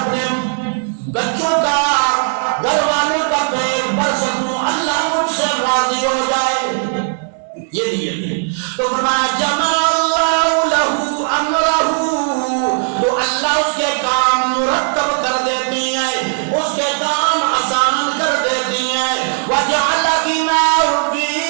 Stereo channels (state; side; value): silent; left; 60 dB below the other